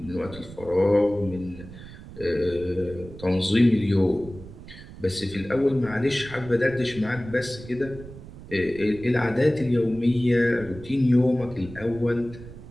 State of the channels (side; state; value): right; noise; rumble, 16 dB below the sound